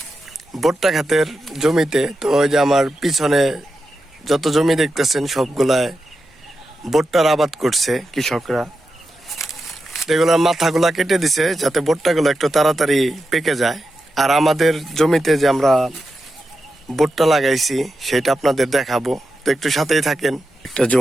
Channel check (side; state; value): both; normal; correlation 0.89